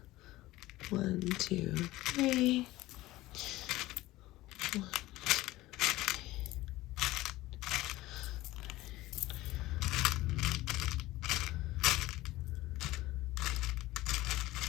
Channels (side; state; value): right; quieter; 17.7 dB